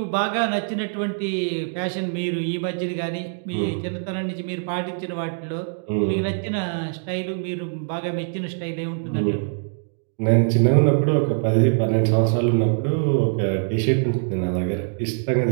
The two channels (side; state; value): left; silent; digital silence